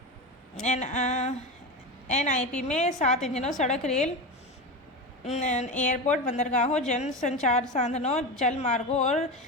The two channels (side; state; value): both; normal; correlation 0.21